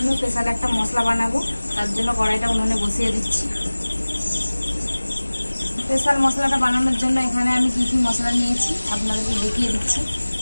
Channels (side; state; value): both; inverted; correlation -1.00